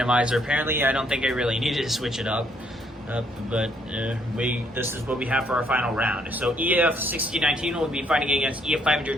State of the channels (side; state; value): both; normal; correlation 0.69